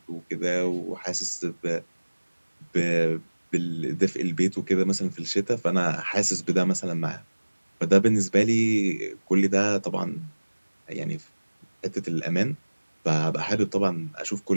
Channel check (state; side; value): inverted; both; correlation -1.00